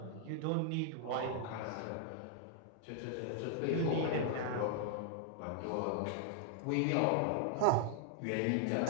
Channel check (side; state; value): both; different; correlation 0.00